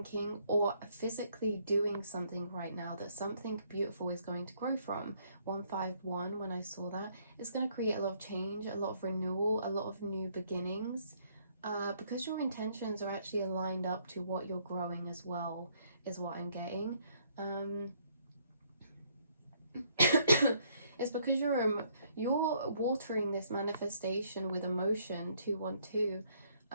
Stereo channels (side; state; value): both; inverted; correlation -0.67